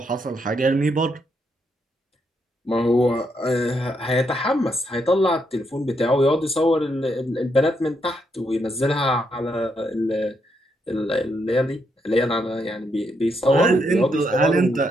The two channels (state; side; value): normal; both; correlation 0.78